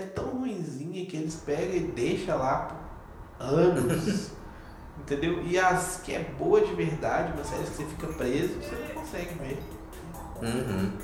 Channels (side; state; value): both; identical; correlation 1.00